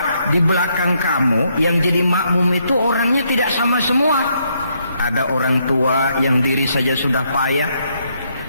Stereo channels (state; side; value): inverted; both; correlation -0.74